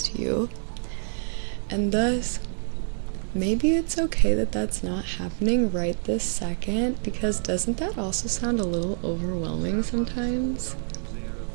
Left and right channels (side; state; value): left; silent; digital silence